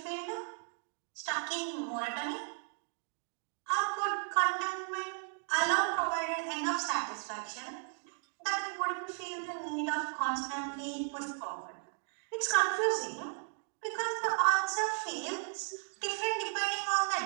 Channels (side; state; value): left; silent; 54 dB below the other